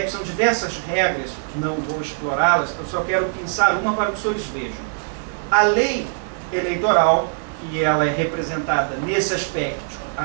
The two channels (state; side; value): silent; left; digital silence